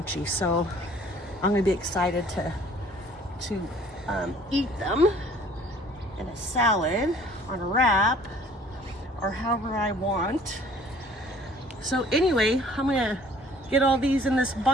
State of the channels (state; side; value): normal; both; correlation 0.54